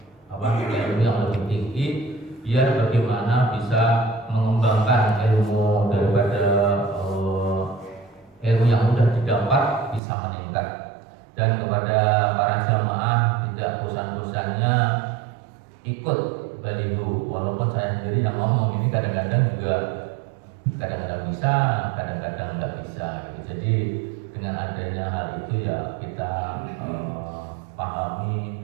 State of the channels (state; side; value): drops out; left; at 10.0 s